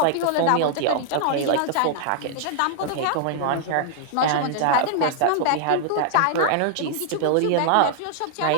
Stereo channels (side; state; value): both; different; correlation -0.01